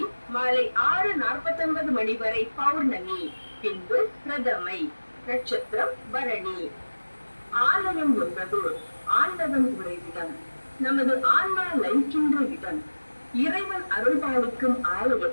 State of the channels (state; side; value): inverted; both; correlation -1.00